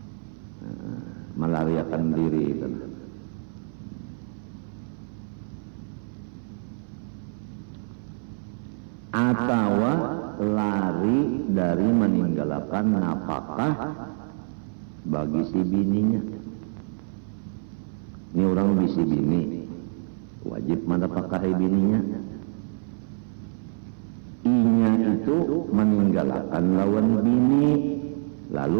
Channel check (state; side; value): silent; left; 58 dB below the other